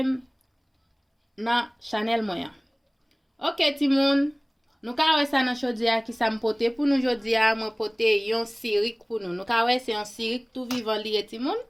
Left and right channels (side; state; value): both; identical; correlation 1.00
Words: nan channel moyen. OK Timoun, nous ka wè ça nan chodia qui ça m'pote pour nous jodia, moi pote yon sirik pour nous. Nous ka wè c'est un sirik tout vivant li Timoun.